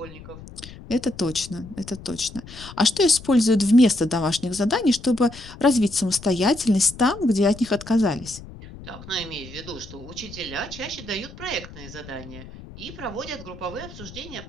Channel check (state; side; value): noise; left; rumble, 16 dB below the sound